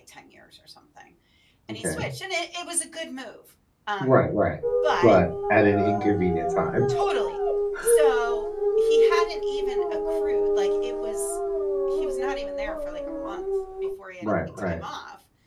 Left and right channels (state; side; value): identical; both; correlation 1.00